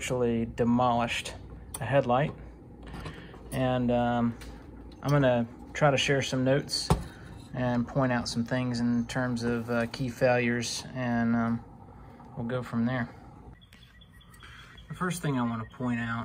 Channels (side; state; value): both; identical; correlation 1.00